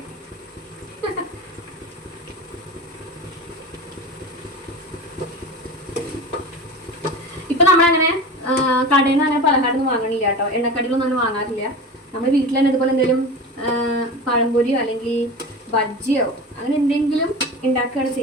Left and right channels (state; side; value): normal; both; correlation 0.31